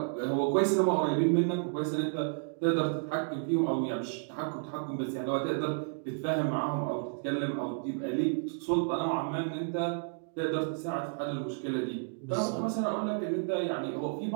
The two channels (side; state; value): left; silent; digital silence